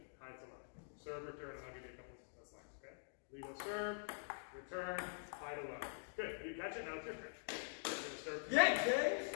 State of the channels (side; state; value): right; silent; digital silence